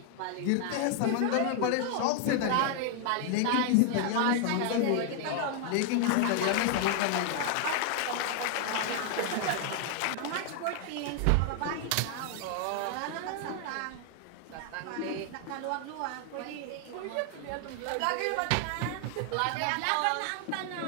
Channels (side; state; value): both; different; correlation 0.00